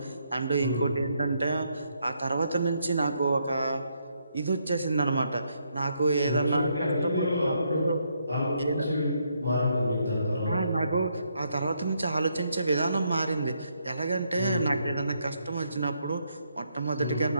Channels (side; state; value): both; inverted; correlation -0.76